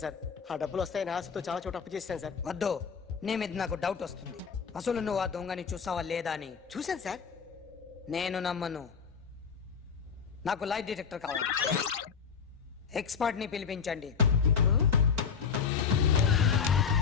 సార్. ఆ డబ్బులు వస్తాయని ఆశతో చాలా చోట అప్పు చేశాను సార్. వద్దు, నీ మీద నాకు డౌట్ వస్తుంది. అసలు నువ్వు ఆ దొంగని చూసావా లేదా అని. చూశాను సార్. నేను నమ్మను. నాకు లైట్ డిటెక్టర్ కావాలి. ఎక్స్పర్ట్ ని పిలిపించండి.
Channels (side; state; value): right; quieter; 6.3 dB